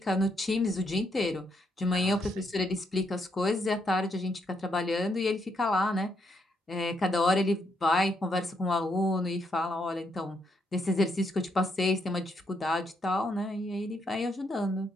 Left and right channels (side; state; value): both; normal; correlation 0.76